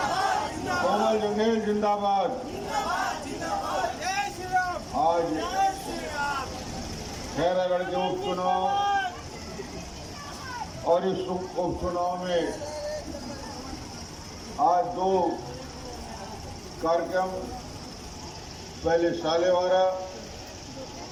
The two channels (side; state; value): both; identical; correlation 1.00